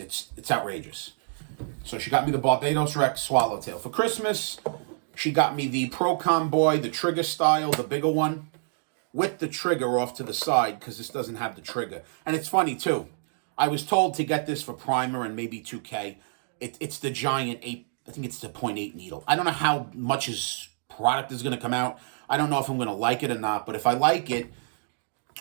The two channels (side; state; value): left; silent; digital silence